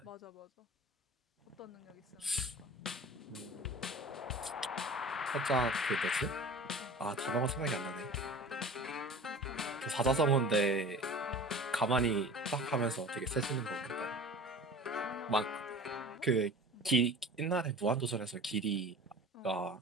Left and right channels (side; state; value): both; normal; correlation 0.39